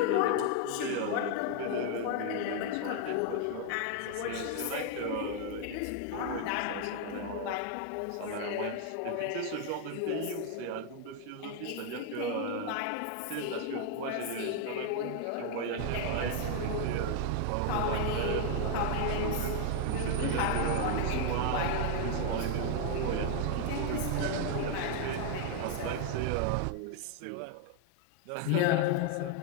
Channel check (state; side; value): different; both; correlation 0.00